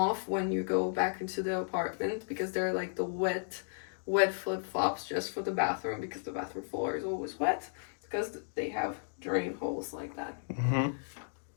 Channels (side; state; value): right; silent; digital silence